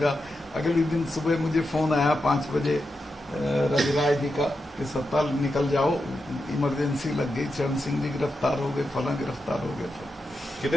अगले दिन सुबह मुझे फोन आया 5 बजे रविराज जी का कि सत्ता निकल जाओ, इमरजेंसी लग गई, चरण सिंह जी गिरफ्तार हो गए, फला गिरफ्तार हो गए।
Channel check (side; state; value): both; normal; correlation 0.88